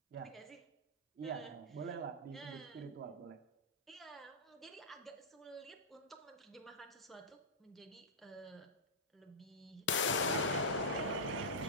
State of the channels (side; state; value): both; normal; correlation -0.12